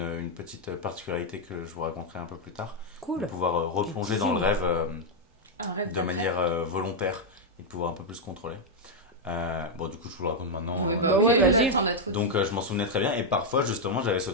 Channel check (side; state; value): both; normal; correlation 0.00